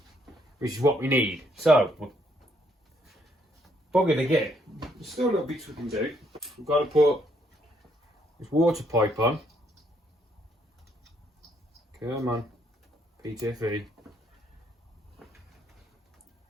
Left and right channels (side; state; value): both; normal; correlation 0.71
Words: which is what we need. So we're buggered again. There's still little bits we can do. We've got to put this water pipe on. Come on, PTFE.